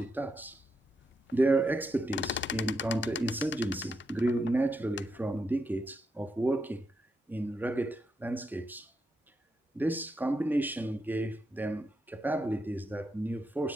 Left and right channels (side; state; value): both; normal; correlation 0.83